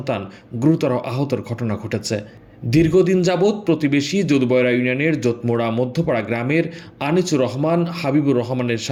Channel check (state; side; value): identical; both; correlation 1.00